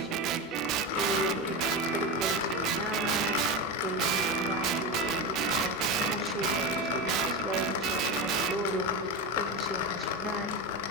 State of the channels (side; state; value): both; normal; correlation 0.19